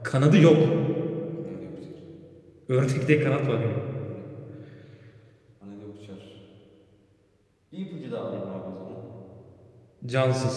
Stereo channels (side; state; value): both; identical; correlation 1.00